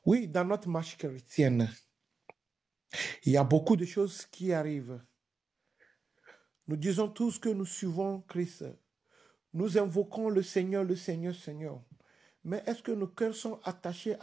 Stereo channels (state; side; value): quieter; left; 4.6 dB